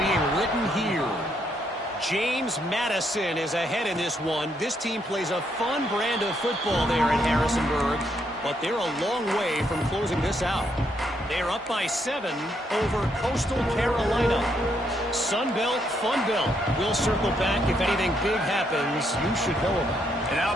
written here. James Madison is ahead in this one. This team plays a fun brand of football there in Harrisonburg, but they're a long way from closing this out. They're up by 7 over Coastal Carolina. Sunbelt, Funbelt. We'll circle back if anything big happens you should know about. And how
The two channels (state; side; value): normal; both; correlation 0.75